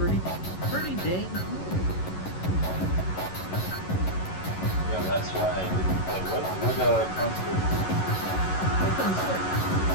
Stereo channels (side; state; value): right; late; 11 ms